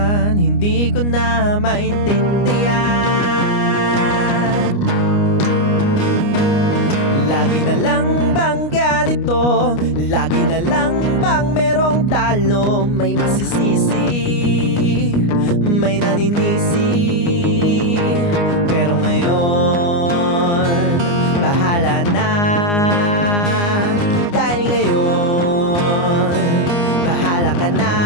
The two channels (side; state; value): right; late; 29 ms